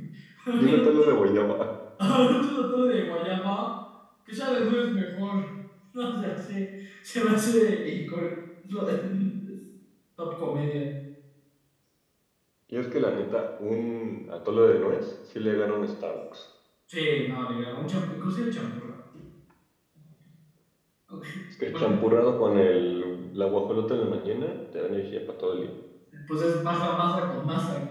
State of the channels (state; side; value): identical; both; correlation 1.00